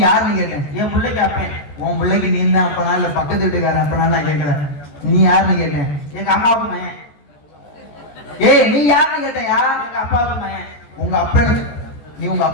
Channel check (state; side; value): late; right; 14 ms